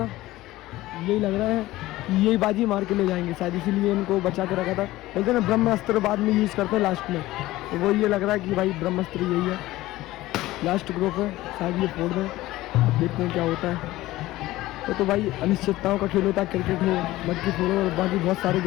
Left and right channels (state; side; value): quieter; right; 17.1 dB